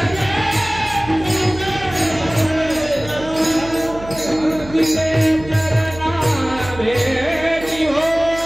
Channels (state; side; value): noise; right; hum, 15 dB below the sound